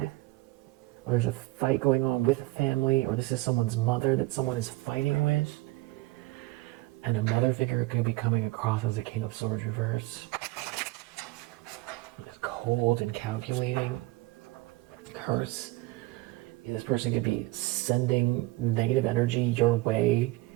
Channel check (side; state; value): left; quieter; 20.1 dB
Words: Or there's a fight going on with a family, or this is someone's mother that someone is fighting with. And a mother figure could be coming across as a King of Swords reverse. Cold and calculating. Curse. This person could be sending negative energy your way